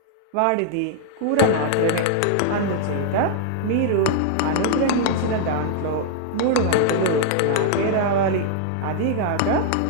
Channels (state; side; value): different; both; correlation 0.00